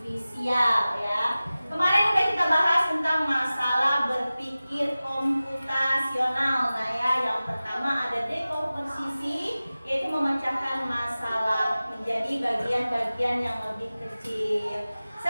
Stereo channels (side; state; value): both; inverted; correlation -0.97